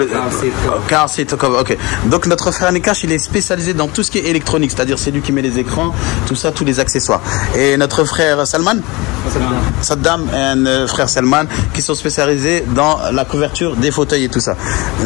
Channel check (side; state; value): right; quieter; 24.0 dB